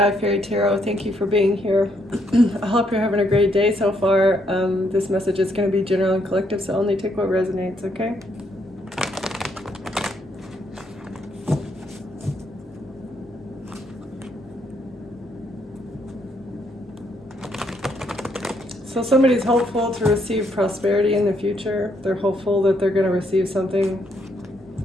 Fairy Tarot. Thank you for being here. I hope you're having a great day so far. This message is going to be general and collective, so only take what resonates, okay? So somebody's hopeful to receive prosperity in the future. They're hopeful that they're going to receive something,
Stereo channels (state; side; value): normal; both; correlation 0.73